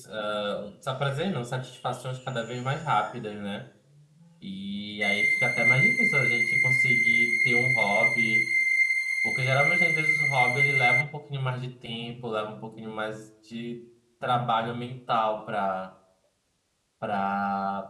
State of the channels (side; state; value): both; identical; correlation 1.00